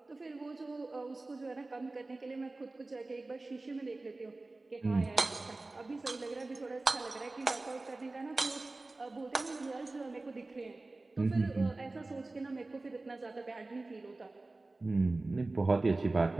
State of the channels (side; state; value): left; quieter; 3.2 dB